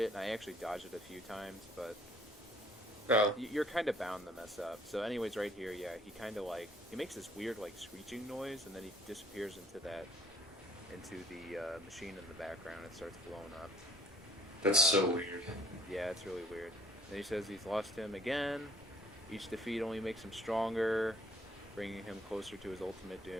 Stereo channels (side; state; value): both; normal; correlation 0.59